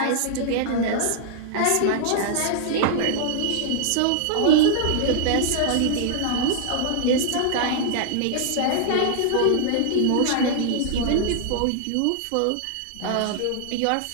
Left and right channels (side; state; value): both; different; correlation -0.01